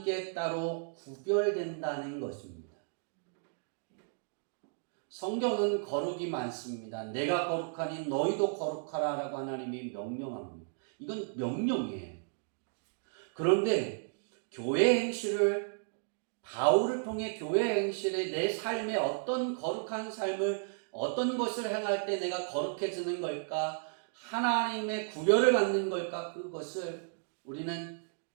따로 구별된다는 것입니다. 성경은 거룩이 많습니다. 내가 거룩하니 너희도 거룩하라 라고 하나님이 명령합니다. 이건 명령이에요. 그런데 교회 행실을 바울을 통해 교회 행실에 내 삶에 어떤 거룩한 삶을 어떤 것을 행할 때 내가 거룩해지는 걸까? 하나님의 구별을 받는 걸까? 그것을 우리는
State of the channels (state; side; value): silent; left; digital silence